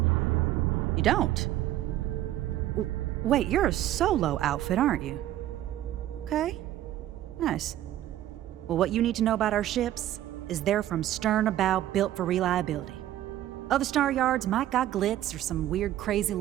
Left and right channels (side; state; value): left; quieter; 13.2 dB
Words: You don't? Wait, you're a solo outfit, aren't you? Okay. Nice. Well, what you need to know about our ships is they're from stern to bow, built for reliability. Other star yards might got glitz or some weird crazy